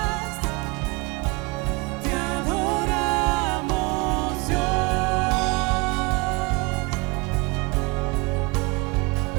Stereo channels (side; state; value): left; quieter; 27.4 dB